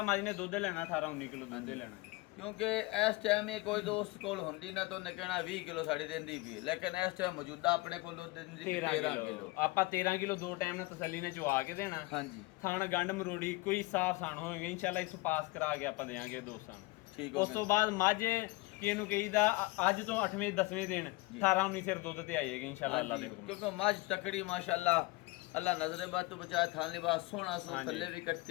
ਮੱਝ ਨੇ ਦੁੱਧ ਲੈਣਾ 18 19 ਕਿਲੋ ਦੁੱਧ ਲੈਣਾ। ਕਿਉਂਕਿ ਇਸ ਟਾਈਮ ਇਹ ਕੋਈ ਦੋਸਤ ਕੋਲ ਹੁੰਦੀ ਨਾ ਤਾਂ ਉਹਨੇ ਕਹਿਣਾ 20 ਕਿਲੋ ਸਾਡੀ ਦਿੰਦੀ ਵੀ, ਲੇਕਿਨ ਇਸ ਟਾਈਮ ਮੌਜੂਦਾ ਆਪਣੇ ਕੋਲ ਦੁੱਧ ਦਿੰਦੀ 13 ਕਿਲੋ। ਕਿਲੋ। ਆਪਾਂ 13 ਕਿਲੋ ਦੋ ਟਾਈਮ ਨਾਲ ਤਸੱਲੀ ਨਾਲ ਚਵਾ ਕੇ ਦੇਣਾ। ਹਾਂਜੀ ਥਾਣ ਗੰਢ ਮਰੋੜੀ ਕੋਈ ਸਾਫ਼ ਸਾਣ ਹੋਏਗਾ ਇਨਸ਼ਾਅੱਲਾ ਇਸ ਪਾਸ ਕਰਾ ਕੇ ਆਪਾਂ ਦੇਾਂਗੇ ਦੋਸਤਾਂ ਨੂੰ। ਠੀਕ ਹੋ ਉਸ ਤੋਂ ਬਾਅਦ ਮੱਝ ਕਿ ਇਹਨੂੰ ਕਹੀਦਾ ਅੱਜ ਤੋਂ 8ਵੇਂ 10ਵੇਂ ਦਿਨ 18 19 ਸਿਰ ਦੁੱਧ ਤੇ ਆਏਗੀ ਇਨਸ਼ਾਅੱਲਾ ਅੱਲਾ ਦੇ ਹੁਕਮ ਨਾਲ। ਕਿਉਂਕਿ ਮੱਝ ਤਕੜੀ ਮਾਸ਼ਾਅੱਲਾ, ਅੱਲਾ ਨਜ਼ਰੇ ਬਾਤ ਤੋਂ ਬਚਾਏ। ਥਾਨ ਲਿਬਾਸ ਸੋਹਣਾ ਸੋ, ਹਾਂਜੀ। ਥੱਲੇ ਵੀ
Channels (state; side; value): quieter; right; 22.5 dB